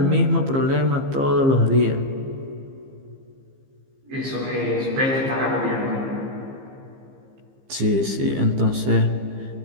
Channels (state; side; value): late; left; 15 ms